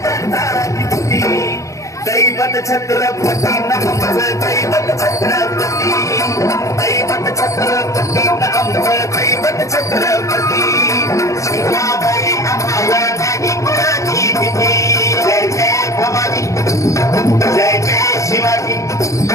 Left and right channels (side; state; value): right; late; 0.15 ms